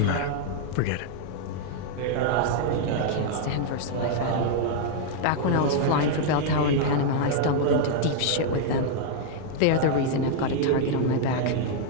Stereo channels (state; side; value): different; both; correlation -0.01